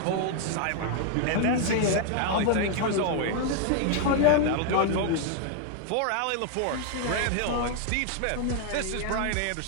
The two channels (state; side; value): different; both; correlation 0.00